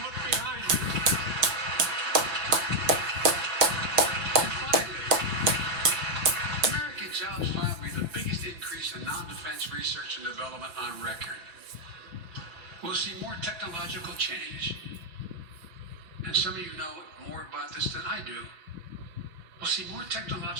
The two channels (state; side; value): late; left; 6.0 ms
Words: look behind you. And finally, American Jobs Plan will be the biggest increase in non-defense research and development on record. We'll see more technological change. And some of you know more about this than I do. We'll see more